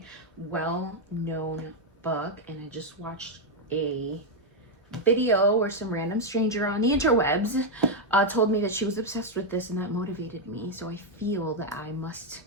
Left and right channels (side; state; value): both; normal; correlation 0.01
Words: well-known book, and I just watched a video where some random stranger on the interwebs told me that she was obsessed with this, and that motivated me. So I feel that I must